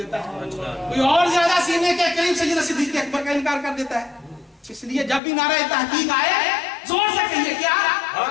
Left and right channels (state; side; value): drops out; right; at 5.2 s